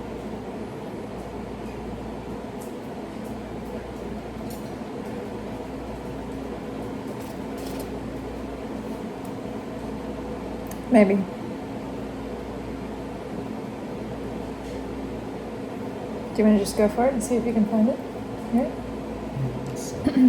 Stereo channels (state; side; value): identical; both; correlation 1.00